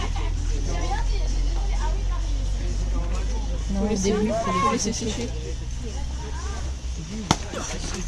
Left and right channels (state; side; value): identical; both; correlation 1.00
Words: Pour le début, il faut Laissez sécher.